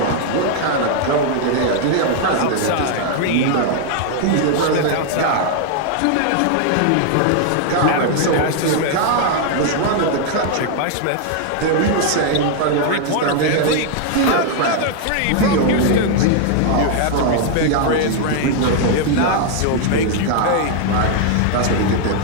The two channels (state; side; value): different; both; correlation 0.00